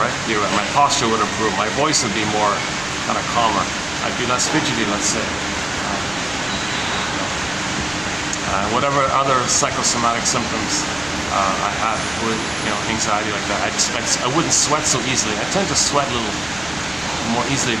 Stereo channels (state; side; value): noise; left; rumble, 19 dB below the sound